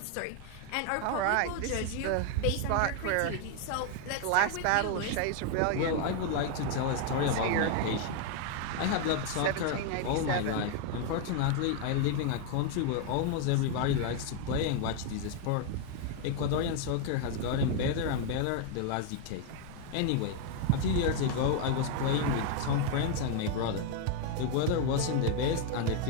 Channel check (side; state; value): both; different; correlation 0.01